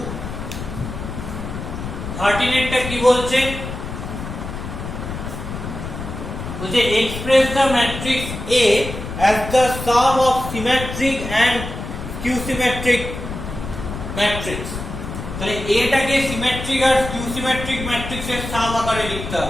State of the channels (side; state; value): left; noise; rumble, 7 dB below the sound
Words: 13 এরটা কি বলছে বলছে express the matrix A as the sum of symmetric and skew symmetric matrix তাহলে এটাকে সিমেট্রিক আর skew symmetric ম্যাট্রিক্সের সাম আকারে লিখতে